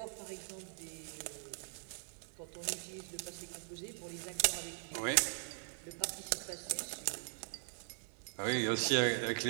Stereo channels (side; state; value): left; silent; digital silence